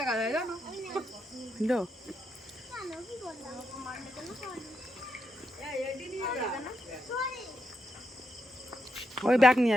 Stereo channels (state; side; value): normal; both; correlation 0.82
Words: যায় জানো। ওই ব্যাগ নিয়ে